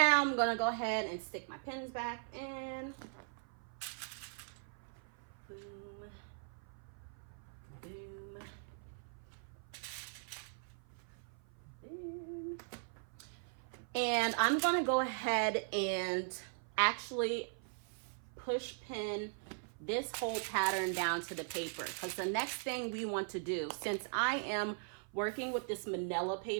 I'm going to go ahead and stick my pins back in. Boom. Boom. Boom. And I'm going to go ahead and actually push pin this whole pattern down to the paper, because the next thing we want to do, since I am working with this manila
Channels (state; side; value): silent; left; 51 dB below the other